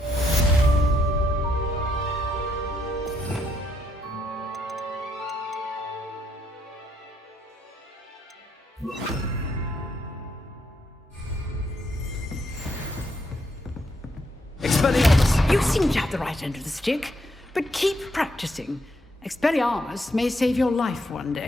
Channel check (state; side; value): normal; both; correlation 0.76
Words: Expelliarmus! You seem to have the right end of the stick, but keep practicing. Expelliarmus may save your life one